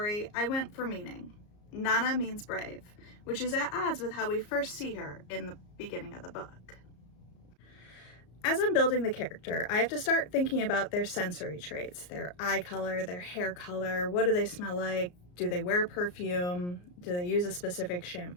I went for meaning. Nana means brave, which is at odds with how we first see her in the beginning of the book. As I'm building the character, I have to start thinking about their sensory traits, their eye color, their hair color, what do they smell like, do they wear perfume, do they use a specific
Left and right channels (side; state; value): right; late; 34 ms